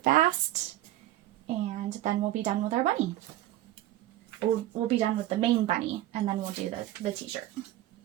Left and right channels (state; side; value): quieter; left; 14.6 dB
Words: and then we'll be done with our bunny. We'll be done with the main bunny, and then we'll do the t-shirt.